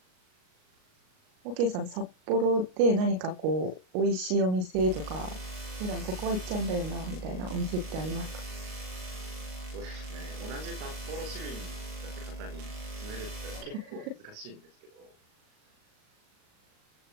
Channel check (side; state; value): left; late; 38 ms